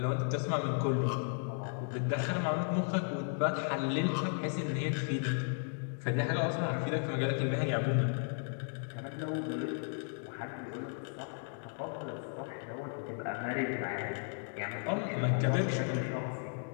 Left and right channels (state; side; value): silent; right; 55 dB below the other